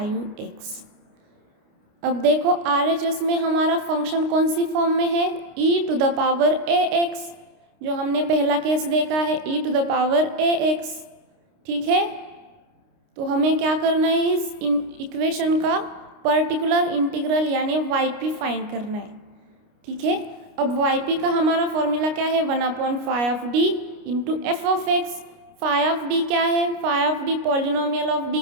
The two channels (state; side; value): late; left; 29 ms